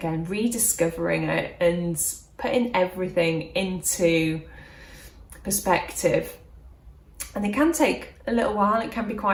rediscovering it and putting everything into perspective. And it can take a little while, it can be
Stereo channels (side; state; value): both; identical; correlation 1.00